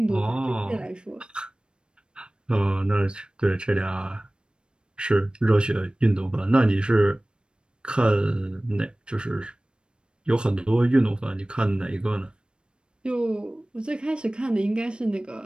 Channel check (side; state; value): left; late; 0.053 ms